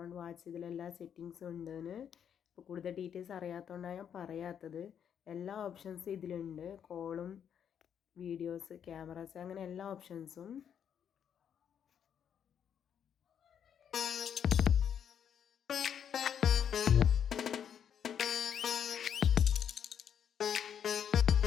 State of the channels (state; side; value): quieter; right; 8.5 dB